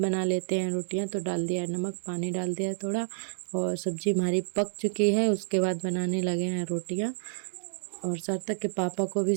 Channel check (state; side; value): silent; left; digital silence